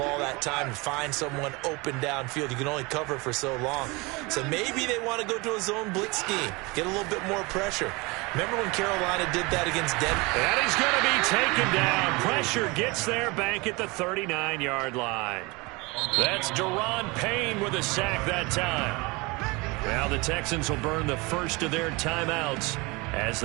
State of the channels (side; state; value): left; quieter; 25.6 dB